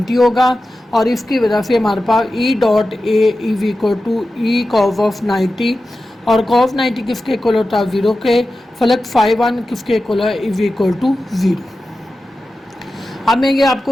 होगा, और इसकी वजह से हमारे पास E dot A is equal to E cos of 90, और कॉस 90 किसके इक्वल होता है, 0 के। फ्लक्स φ1 किसके इक्वल है, इज इक्वल टू 0। अब मैं ये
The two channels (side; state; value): both; normal; correlation 0.93